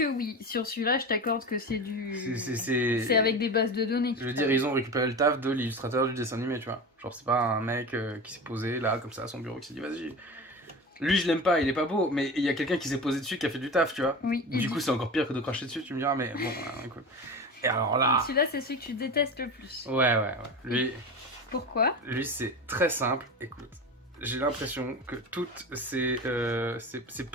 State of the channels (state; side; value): normal; both; correlation 0.28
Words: oui, sur celui-là je t'accorde que c'est du... C'est avec des bases de données. Je veux dire, ils ont récupéré le taf de l'illustrateur du dessin animé, tu vois. Genre c'est pas un mec qui s'est posé là, comme ça, à son bureau, qui s'est dit vas-y... Lui je l'aime pas, il est pas beau, mais il y a quelqu'un qui s'est posé dessus, qui a fait du taf, tu vois. Oui. Du coup c'est encore pire que de cracher dessus, tu me diras, mais bon, écoute. Et alors là... Celui-là c'est celui que tu détestes le plus. Ouais. Pourquoi? Lui c'est très simple, écoute. J'ai l'impression que toutes ces